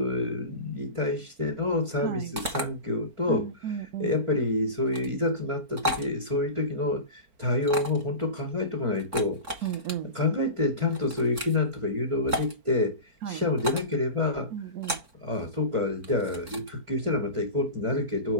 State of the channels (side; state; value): left; late; 3.7 ms